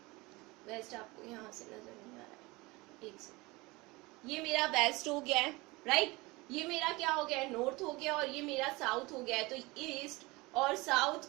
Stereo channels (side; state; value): left; quieter; 23.0 dB